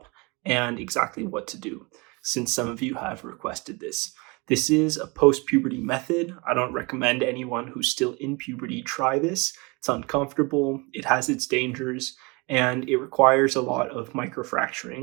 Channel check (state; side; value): quieter; left; 27.7 dB